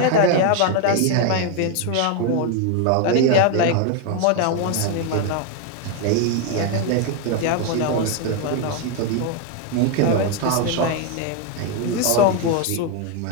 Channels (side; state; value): both; different; correlation 0.01